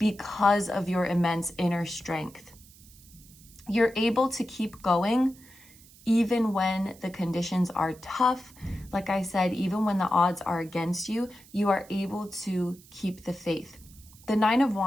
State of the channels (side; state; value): right; noise; hiss, 24 dB below the sound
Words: of your immense inner strength. You're able to keep going even when the conditions are tough. Like I said, even when the odds are against you, you are able to keep the faith. The Nine of